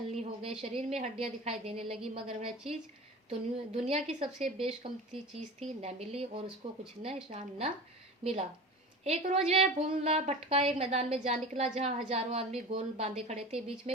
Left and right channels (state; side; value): normal; both; correlation 0.33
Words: हो गए, शरीर में हड्डियां दिखाई देने लगी, मगर वह चीज दुनिया की सबसे बेशकीमती चीज थी, न मिली और उसको कुछ निशान न मिला। एक रोज वह भूला भटका एक मैदान में जा निकला जहां हजारों आदमी गोल बांधे खड़े थे। बीच